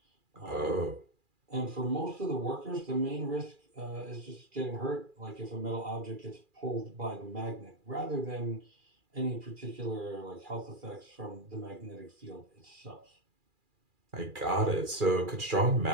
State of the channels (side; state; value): left; late; 2.4 ms